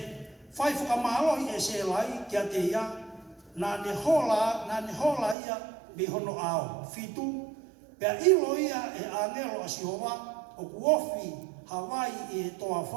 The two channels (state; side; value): drops out; left; at 5.4 s